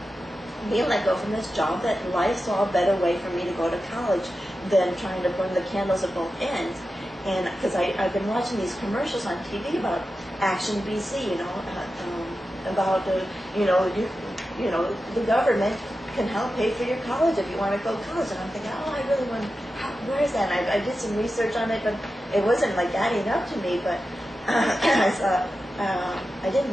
being let go from this job, that life saw a better way for me to go to college than trying to burn the candles at both ends. And because I've been watching these commercials on TV about Action BC, about the government can help pay for your college if you want to go to college. And I'm thinking, oh, I really want. Where is that? And I did some research on it, but it wasn't like adding up to me. But I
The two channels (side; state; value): both; normal; correlation 0.92